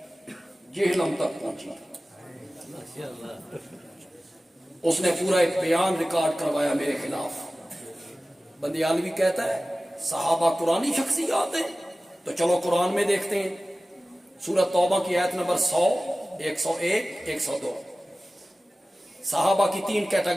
جہنم تک پہنچی۔ اس نے پورا ایک بیان ریکارڈ کروایا میرے خلاف۔ بندیالوی کہتا ہے صحابہ قرآنی شخصیات ہیں، تو چلو قرآن میں دیکھتے ہیں، سورۃ توبہ کی آیت نمبر 100، 101، 102، صحابہ کی 3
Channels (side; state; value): both; normal; correlation 0.96